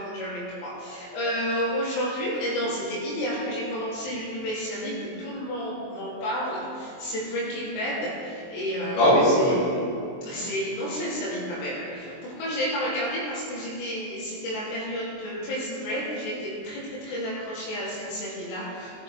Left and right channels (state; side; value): late; right; 23 ms